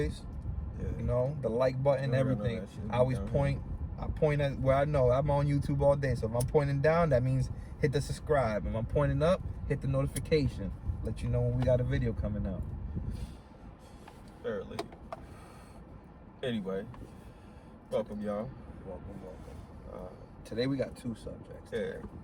Yeah. You know, the like button, No, everything. that shit I always down point. I point at where I know. I'm on YouTube all day. So if I'm pointing down, that means hit the subscribe. If I'm pointing up, hit the notification. Let you know when we got a video coming out. Fairly. Anyway, welcome, y'all. Welcome. Today we got two subjects. Yeah,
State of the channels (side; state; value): both; identical; correlation 1.00